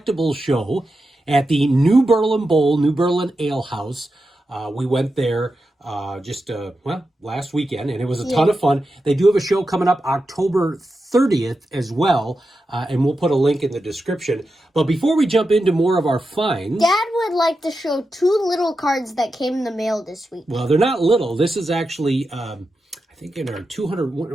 Show at the New Berlin Bowl, New Berlin Ale House. We went there last weekend, and it was a ton of fun. They do have a show coming up October 30th as well, and we'll put a link in the description. But before we jump into more of our finds... Dad would like to show two little cards that came in the mail this week. Well, they're not little. This is actually, I think in our 200,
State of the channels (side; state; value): both; normal; correlation 0.89